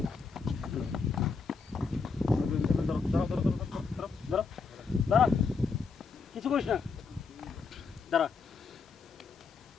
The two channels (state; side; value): quieter; right; 4.9 dB